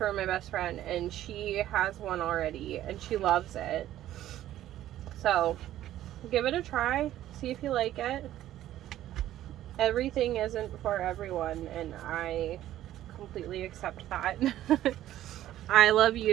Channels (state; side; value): quieter; left; 13.1 dB